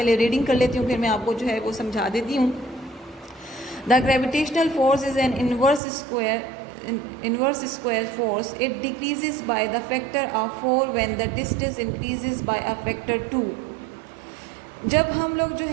रीडिंग कर लेती हूँ फिर मैं आपको जो है वो समझा देती हूँ। The gravitational force is an inverse square force. It decreases by the factor of 4 when the distance increases by a factor 2. जब हम लोग जो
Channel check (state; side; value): drops out; left; at 5.8 s